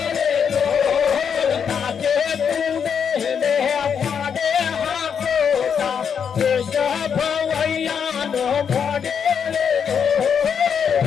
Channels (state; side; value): quieter; right; 7.2 dB